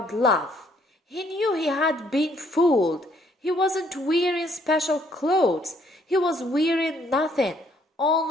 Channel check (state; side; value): normal; both; correlation 0.66